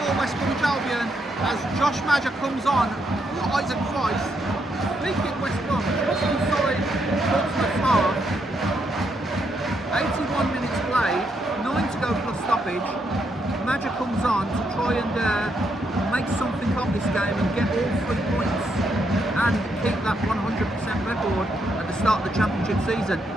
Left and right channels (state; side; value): normal; both; correlation 0.78